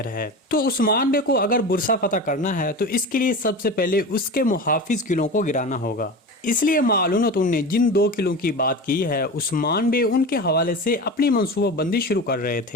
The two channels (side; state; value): both; normal; correlation 0.29